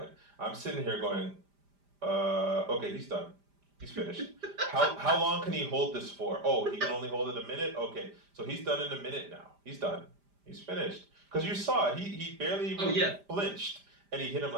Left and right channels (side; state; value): left; late; 5.0 ms